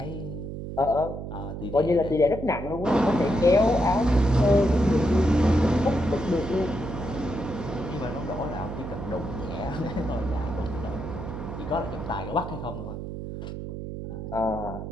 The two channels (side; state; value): right; noise; hum, 7 dB below the sound